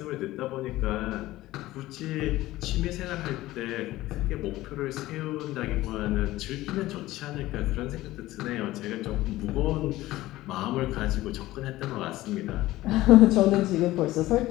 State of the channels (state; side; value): quieter; right; 16.8 dB